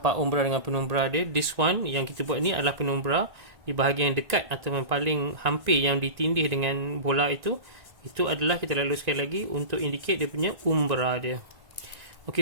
umbra dengan penumbra dia. This one yang kita buat ni adalah penumbra di bahagian dekat atau yang paling hampir yang ditindih dengan bola itu. Itu adalah kita lalu sekali lagi untuk indicate dia punya umbra dia.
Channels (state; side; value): late; left; 1.9 ms